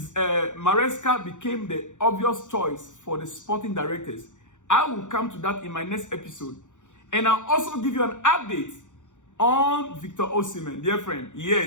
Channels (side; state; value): right; late; 0.85 ms